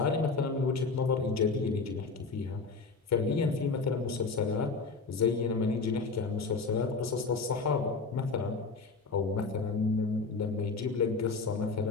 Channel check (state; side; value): quieter; right; 4.2 dB